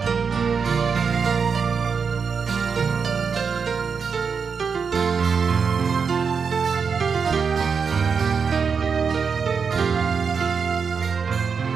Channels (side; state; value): left; quieter; 5.8 dB